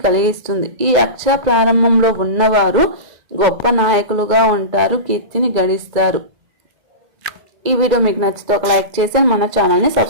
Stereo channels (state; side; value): late; left; 2.0 ms